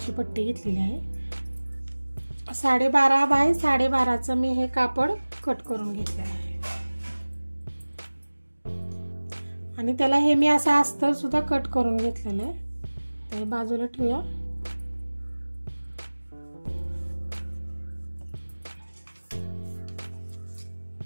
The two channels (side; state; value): both; inverted; correlation -1.00